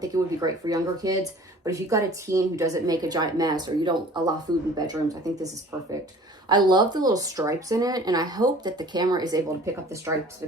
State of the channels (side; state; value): both; normal; correlation 0.47